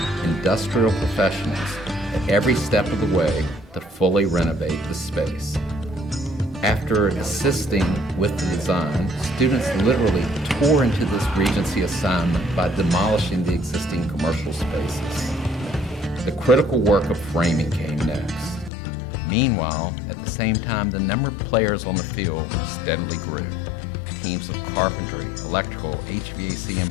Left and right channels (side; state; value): right; drops out; at 18.7 s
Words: industrial professionals at every step of the way to fully renovate the space. After assisting with the design, students literally tore into this Regency assignment by demolishing the existing commercial spaces. The critical work of framing came next. Meanwhile, at the same time, the number of players on the field steadily grew. Teams of carpentry, electrical, HVAC,